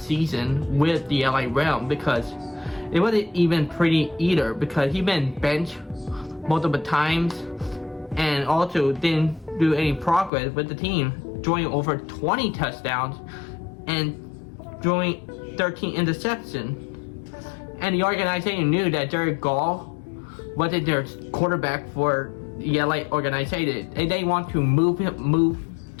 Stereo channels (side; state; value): right; drops out; at 10.3 s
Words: season with the LA Realm, because it wasn't even pretty either, because he been benched multiple times and also didn't do any progress with the team, throwing over 20 touchdowns and throwing 13 interceptions. And the organization knew that Jared Goff wasn't their quarterback for the LA organization, and they want to move